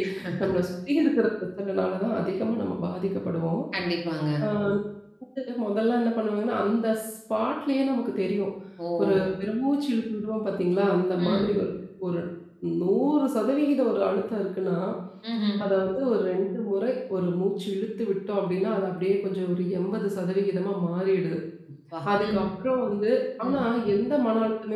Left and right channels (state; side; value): identical; both; correlation 1.00